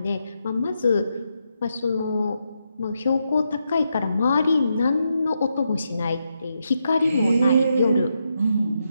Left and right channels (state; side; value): inverted; both; correlation -0.83